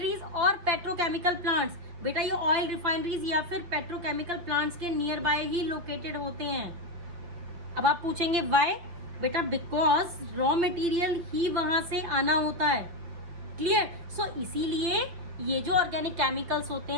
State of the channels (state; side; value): late; left; 6.2 ms